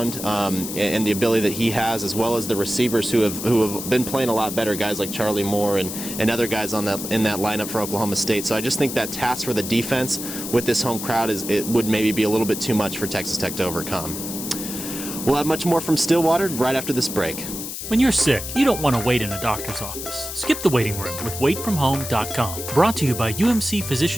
and the ability that he has, as well as the receivers who have been playing a lot better, guys like Charlie Moore and other guys in that lineup for Oklahoma State. So I just think that task for the defense with this home crowd would maybe be a little bit too much for Texas Tech to overcome. We'll have much more from Stillwater right after this break. When you're sick, you don't want to wait in a doctor's office. Skip the waiting room with waitfromhome.com. Brought to you by UMC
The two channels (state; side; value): noise; left; hiss, 7 dB below the sound